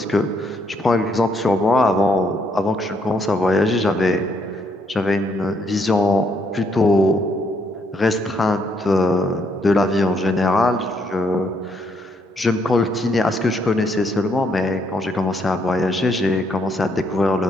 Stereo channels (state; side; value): normal; both; correlation 0.72